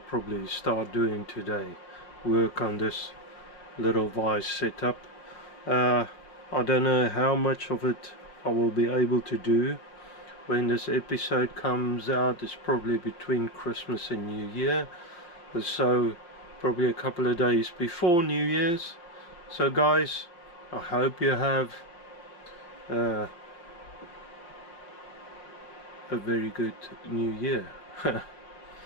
start doing today, work on this little vise setup. I don't know how much of it I will be able to do when this episode comes out. It's probably between Christmas and New Year, so probably a couple of days before New Year's. So guys, I hope you have a very good New Year.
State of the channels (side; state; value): right; late; 5.7 ms